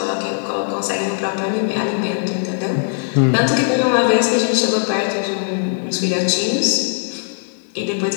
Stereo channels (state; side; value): silent; right; digital silence